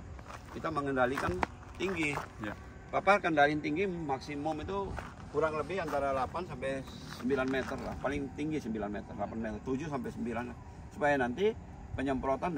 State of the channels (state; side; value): identical; both; correlation 1.00